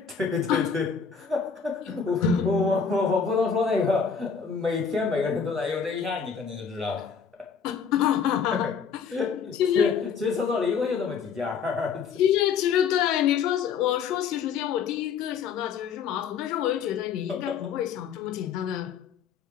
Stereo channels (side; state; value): right; quieter; 6.5 dB